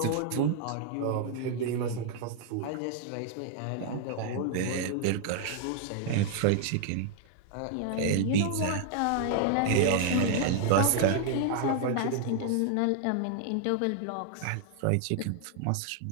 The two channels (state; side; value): different; both; correlation 0.00